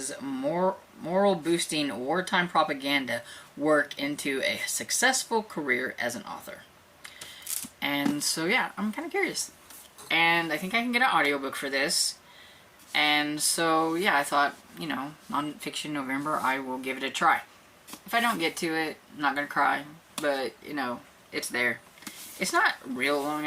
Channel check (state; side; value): identical; both; correlation 1.00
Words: moral-boosting wartime propaganda work into a successful career as an author. And so yeah, I'm kind of curious. And I think I can get an audiobook for this. And so, yeah, I thought, you know, Nonfiction November, I will give it a try. If I don't get to it, I'm not going to cry. But, you know, it's there. It's not real long,